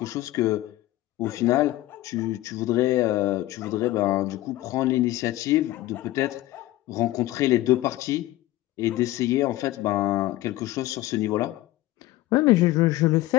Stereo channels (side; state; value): right; quieter; 16.6 dB